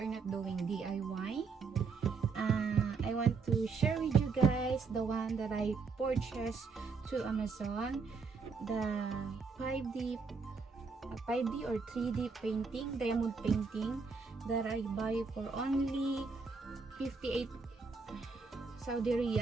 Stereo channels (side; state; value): left; quieter; 4.8 dB